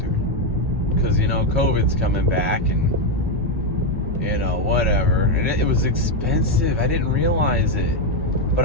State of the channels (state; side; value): normal; both; correlation 0.05